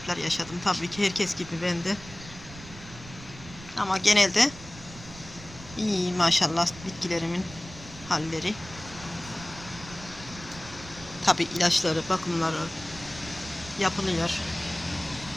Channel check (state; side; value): noise; right; rumble, 16 dB below the sound